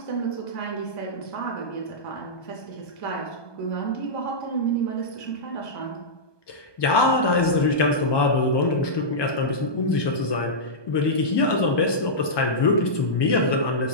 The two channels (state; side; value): late; right; 1.2 ms